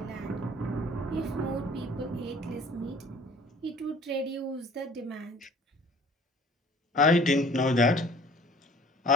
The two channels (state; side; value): normal; both; correlation 0.51